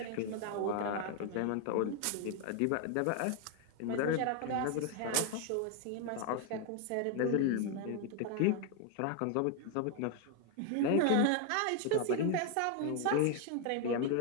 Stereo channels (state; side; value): different; both; correlation 0.01